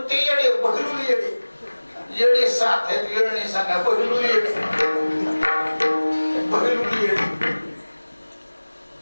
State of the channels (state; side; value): inverted; both; correlation -1.00